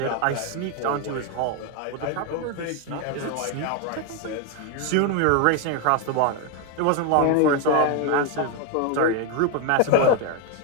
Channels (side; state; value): both; different; correlation 0.01